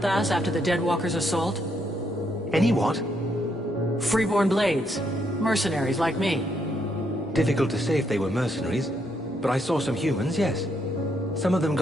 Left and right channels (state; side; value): normal; both; correlation 0.75